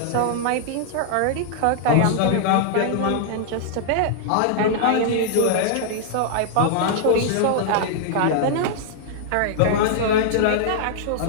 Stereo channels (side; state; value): both; different; correlation -0.01